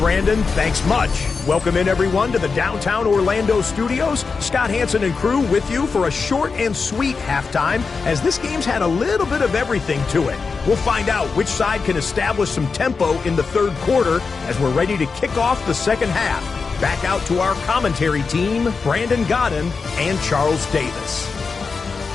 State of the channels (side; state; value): right; quieter; 4.8 dB